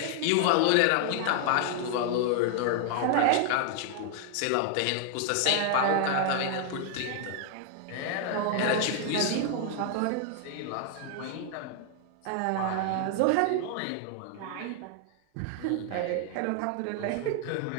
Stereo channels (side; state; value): both; different; correlation 0.00